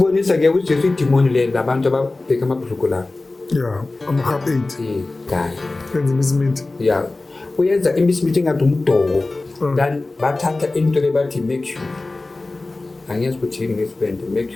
uJesu idimoni le labantu ababheka amabhuluko la ama-half 8 guy yenza imisiminti uyenza imisiminti engathi umdoko then bathatha into le bathi mercury angiyazi ukuthi yini ngesibende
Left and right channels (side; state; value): right; quieter; 3.2 dB